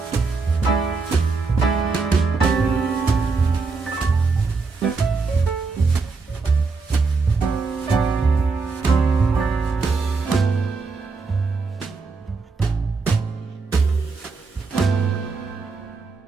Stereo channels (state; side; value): quieter; left; 4.4 dB